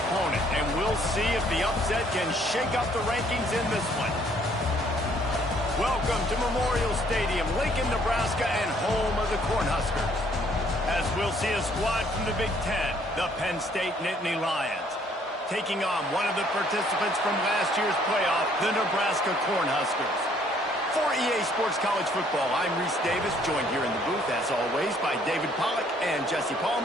and we'll see if the upset can shake up the rankings in this one. Welcome to Memorial Stadium, Lincoln, Nebraska, and home of the Cornhuskers. As we'll see a squad from the Big Ten, the Penn State Nittany Lions, taking on one of the participants from last year's playoff, the Nebraska Cornhuskers. For EA Sports College Football, I'm Reese Davis, joined here in the booth, as always, by David Pollack and Jesse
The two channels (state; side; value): normal; both; correlation 0.63